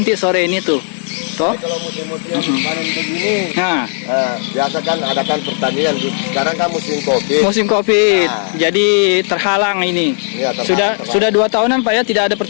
sore ini tuh. Toh? Kalau musim-musim panen begini, biasa kan adakan pertandingan. Sekarang kan musim COVID. Musim COVID, jadi terhalang ini. Ya, sudah 2 tahunan Pak ya tidak ada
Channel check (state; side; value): silent; right; 59 dB below the other